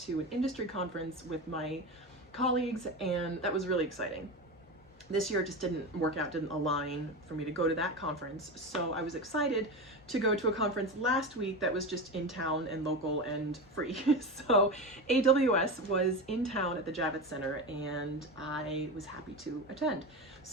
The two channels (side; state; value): both; normal; correlation 0.22